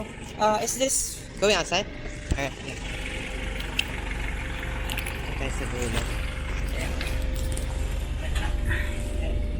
Is this going outside? Alright, yeah. Ito tayo sa dulo. Ayan.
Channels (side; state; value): both; identical; correlation 1.00